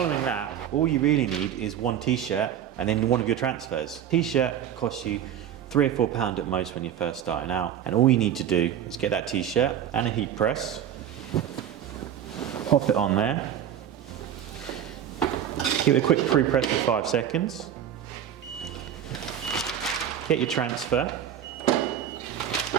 that, all you really need is one t-shirt and then one of your transfers. T-shirt costs you £3 or £4 at most when you're first starting out. And all you need to do is get that t-shirt and a heat press, pop it on there, give it a quick pre-press for 5 seconds. Get your transfer,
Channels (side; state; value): left; quieter; 9.7 dB